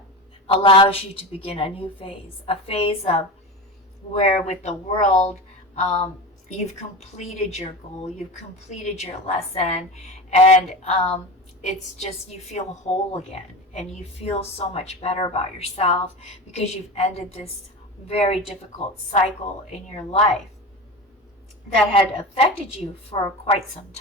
allows you to begin a new phase, a phase of where with the world, you've completed your goal, you've completed your lesson, and it's just you feel whole again, and you feel so much better about yourself because you've ended this very difficult cycle in your life that had affected you for quite some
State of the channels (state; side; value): normal; both; correlation 0.27